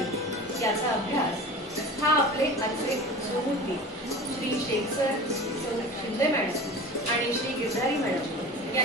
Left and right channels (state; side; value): normal; both; correlation 0.35